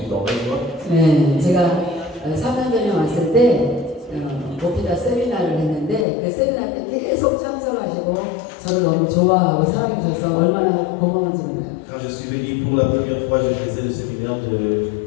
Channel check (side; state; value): right; drops out; at 6.1 s